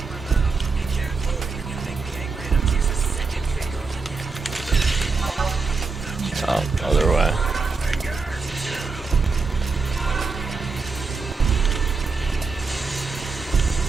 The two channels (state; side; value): quieter; left; 4.4 dB